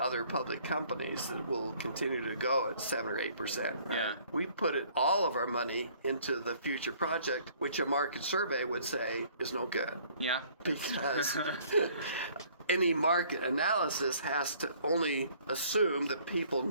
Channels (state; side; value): inverted; both; correlation -0.58